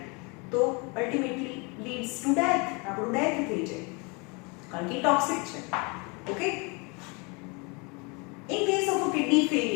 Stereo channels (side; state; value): right; quieter; 30.3 dB